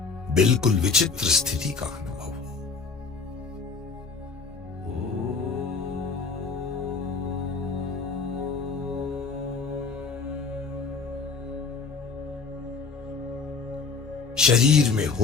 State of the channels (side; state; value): right; quieter; 4.8 dB